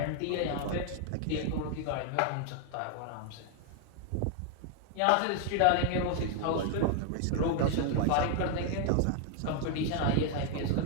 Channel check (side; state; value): both; different; correlation 0.00